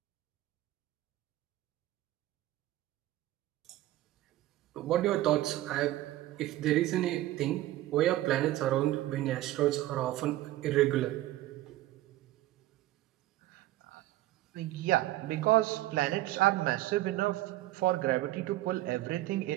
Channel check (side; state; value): left; quieter; 15.7 dB